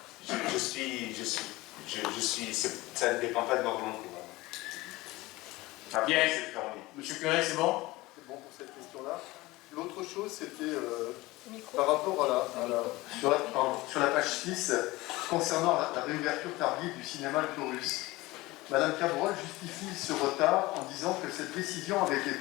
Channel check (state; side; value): quieter; right; 20.2 dB